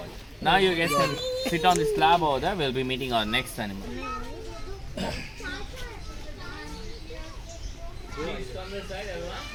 Now you guys can sit on the slab over there. We'll be meeting our next animal. Please come this side, everyone.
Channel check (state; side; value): identical; both; correlation 1.00